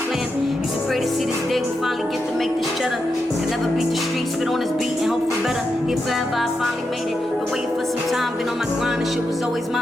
Used to pray to see this day we finally get to make this cheddar. Can never beat the streets, spit on this beat and hope for better. Here forever, I finally made it. Been waiting for some time, been on my grind, and shit was always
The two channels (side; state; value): both; normal; correlation 0.86